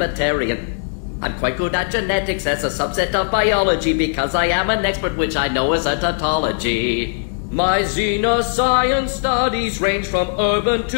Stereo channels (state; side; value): silent; right; digital silence